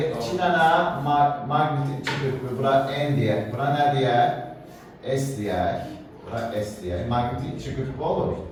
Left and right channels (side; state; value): both; identical; correlation 1.00